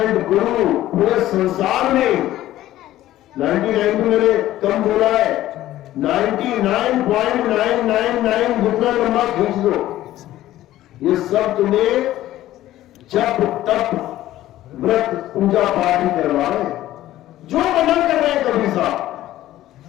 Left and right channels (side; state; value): right; quieter; 14.4 dB